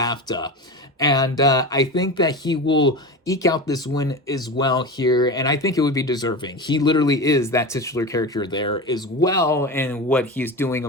And I think that he will eke out this win as well here, and I think it would be deserving. He literally is that titular character there as well, and what he's doing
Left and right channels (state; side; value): normal; both; correlation 0.26